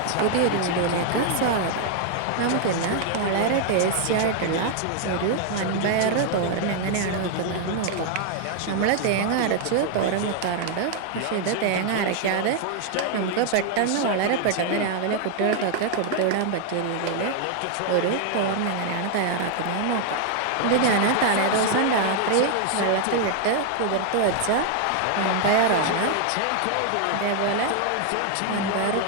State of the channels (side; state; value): both; different; correlation 0.00